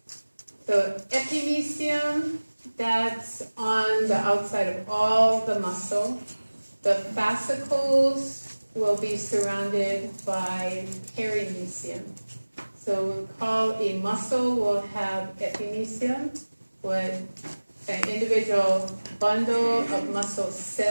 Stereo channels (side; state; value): both; inverted; correlation -1.00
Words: So epimysium, that's on the outside of all the muscle. The fascicles will be surrounded by perimysium. So we call a muscle will have epimysium, with an individual bundle of muscle